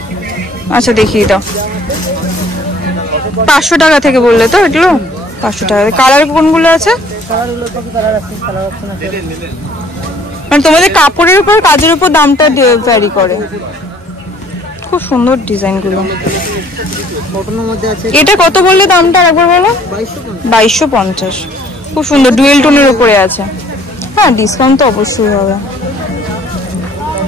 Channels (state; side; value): normal; both; correlation 0.58